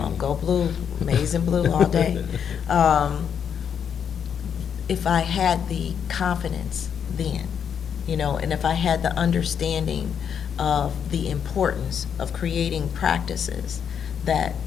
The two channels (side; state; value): right; quieter; 7.9 dB